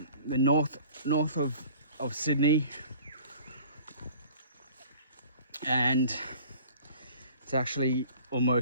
north of Sydney, and it's actually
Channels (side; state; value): both; inverted; correlation -0.49